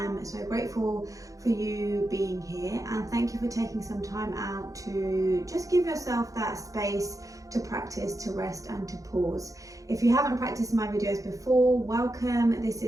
so grateful for you being here, and thank you for taking some time out to just give yourself that space to practice, to rest and to pause. If you haven't practiced my videos before, welcome. This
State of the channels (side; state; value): left; late; 0.16 ms